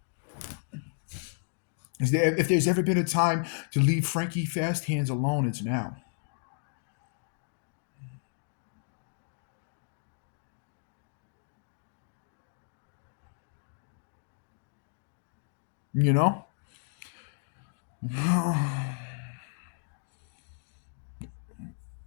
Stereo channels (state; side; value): silent; right; digital silence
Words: If there's ever been a time to leave Frankie Fast Hands alone, it's now. You know?